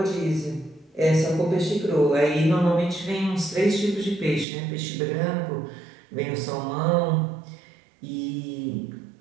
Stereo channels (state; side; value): drops out; left; at 4.5 s